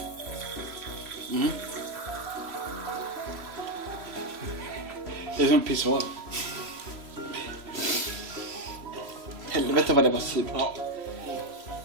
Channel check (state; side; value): late; left; 3.0 ms